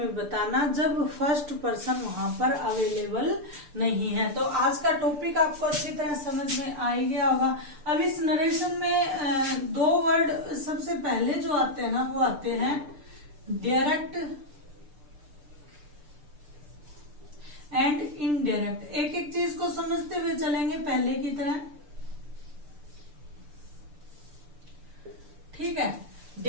बताना जब फर्स्ट पर्सन वहां पर अवेलेबल नहीं है। तो आज का टॉपिक आपको अच्छी तरह समझ में आ ही गया होगा। अब इस नरेशन में दो वर्ड सबसे पहले जो आते हैं ना, वो आते हैं डायरेक्ट एंड इनडायरेक्ट। एक एक चीज को समझते हुए चलेंगे पहले की तरह, ठीक है।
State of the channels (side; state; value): left; late; 6.8 ms